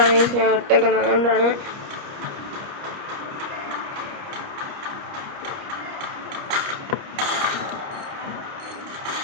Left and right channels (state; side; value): late; left; 29 ms